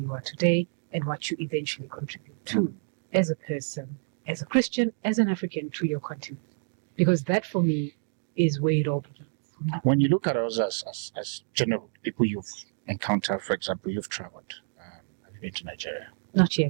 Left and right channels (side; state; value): left; silent; digital silence